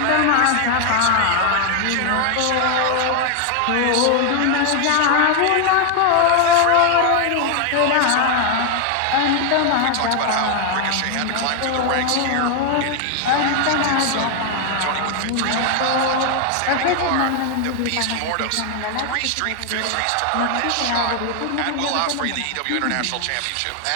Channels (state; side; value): different; both; correlation 0.00